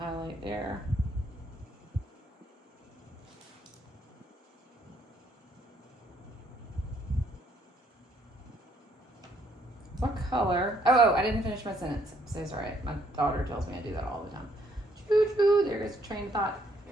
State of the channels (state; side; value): normal; both; correlation 0.68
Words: there. What color? Oh, I didn't finish my sentence. So it's all right. My daughter tells me I do that all the time. Choo choo, there goes a train of thought.